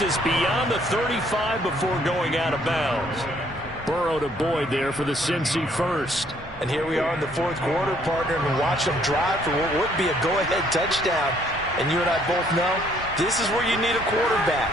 us beyond the 35 before going out of bounds. Burrow to Boyd there for the Cincy first. And here we are in the fourth quarter, partner, and watch them drive for what would be a go-ahead touchdown. And you and I both know this is where you need a quarterback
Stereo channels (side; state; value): both; normal; correlation 0.65